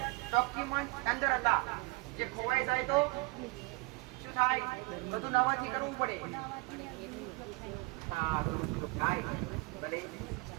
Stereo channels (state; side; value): quieter; left; 25.8 dB